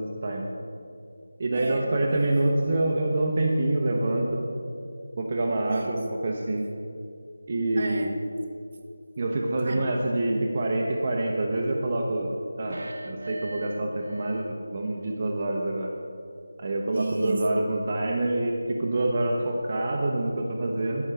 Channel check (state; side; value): inverted; both; correlation -0.94